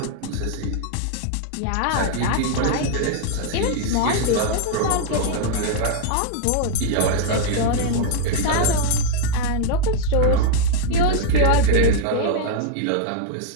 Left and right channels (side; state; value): both; different; correlation 0.00